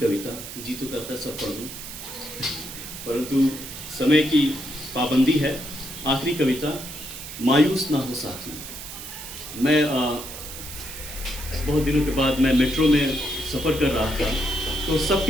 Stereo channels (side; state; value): right; noise; hiss, 11 dB below the sound